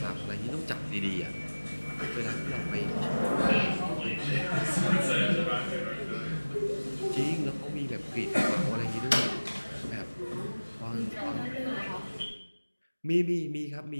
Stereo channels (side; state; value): both; inverted; correlation -1.00